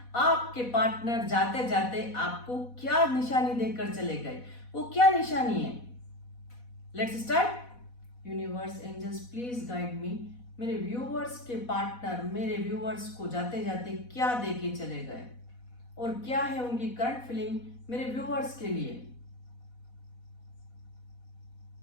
आपके पार्टनर जाते जाते आपको क्या निशानी देकर चले गए, वो क्या निशानी है। Let's start. Universe angels please guide me. मेरे व्यूअर्स के पार्टनर मेरे व्यूअर्स को जाते जाते क्या देके चले गए और क्या है उनकी करंट फीलिंग मेरे व्यूअर्स के लिए।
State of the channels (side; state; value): right; late; 4.1 ms